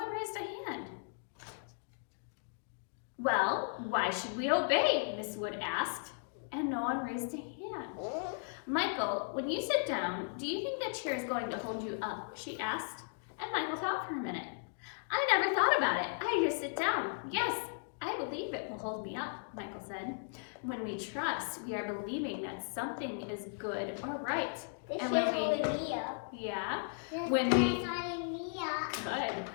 raised a hand. Well, why should we obey? Miss Wood asked, and no one raised a hand. Michael, when you sit down, do you think that chair is going to hold you up? She asked, and Michael thought for a minute. I never thought about it. I just sit down. Yes, I believe it will hold me up, Michael said. When we trust, we are believing that something is good or right. This And chair's when we- holding me up. Yeah, This when we- chair's holding me up. good.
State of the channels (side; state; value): right; silent; digital silence